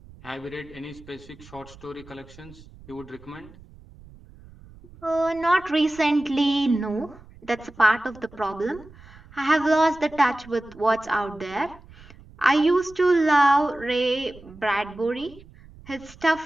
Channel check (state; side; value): noise; right; rumble, 22 dB below the sound